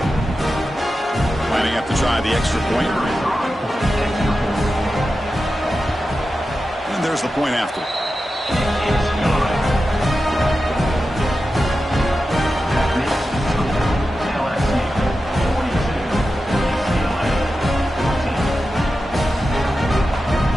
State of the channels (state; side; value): normal; both; correlation 0.92